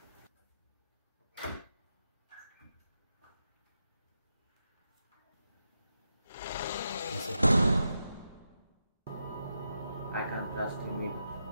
I can't trust him either.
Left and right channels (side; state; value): both; inverted; correlation -0.87